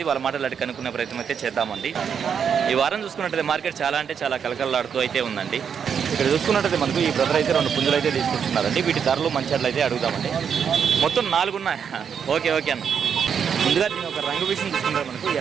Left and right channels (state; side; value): quieter; left; 7.3 dB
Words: వాళ్ళ మాటలు అడిగి కనుక్కునే ప్రయత్నం అయితే చేద్దామండి. ఈ వారం చూసుకున్నట్లయితే మార్కెట్ చాలా అంటే చాలా కలకలలాడుతూ అయితే ఉందండి. ఇక్కడ చూసుకున్నట్లయితే మనకు ఈ బ్రదర్ అయితే 2 పుంజులు అయితే తీసుకొచ్చున్నారండి. వీటి ధరలు మంచి అయితే అడుగుదామండి. మొత్తం 4 ఉన్నాయి. ఓకే అన్న. ముందుగా దీని ఒక రంగు విషయం చూసుకుంటే మనకు